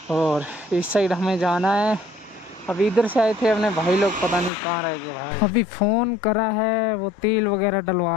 और इस साइड हमें जाना है। अभी इधर से आए थे अपने भाई लोग, पता नहीं कहाँ रह गए भाई। अभी फ़ोन करा है, वो तेल वगैरह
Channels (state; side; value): drops out; right; at 4.5 s